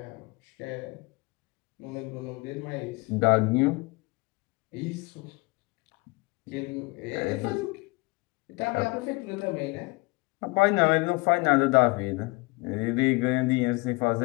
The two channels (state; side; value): quieter; right; 25.7 dB